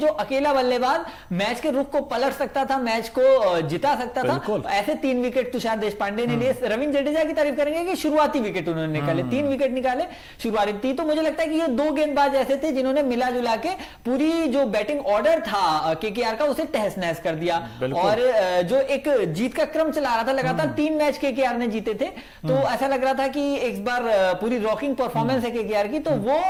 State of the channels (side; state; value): both; identical; correlation 1.00